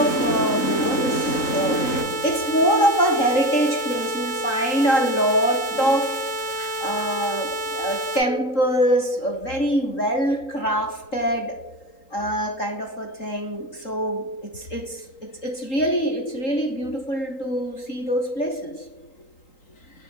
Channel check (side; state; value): right; late; 3.8 ms